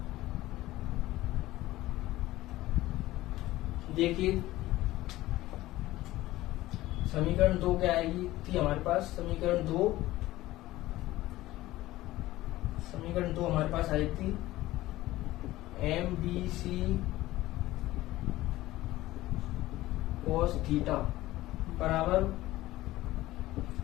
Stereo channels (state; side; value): quieter; right; 16.7 dB